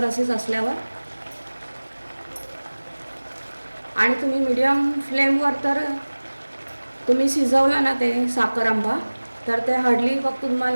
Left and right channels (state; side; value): inverted; both; correlation -1.00